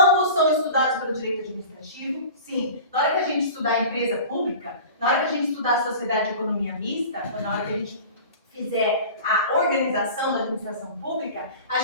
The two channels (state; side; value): inverted; both; correlation -0.38